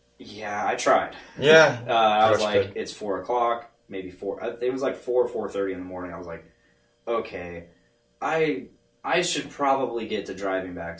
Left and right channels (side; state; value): both; identical; correlation 1.00